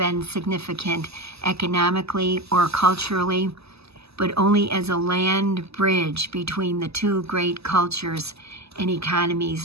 significant economically or culturally, but only as a land bridge between the two great cultures and economies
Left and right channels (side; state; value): left; late; 0.79 ms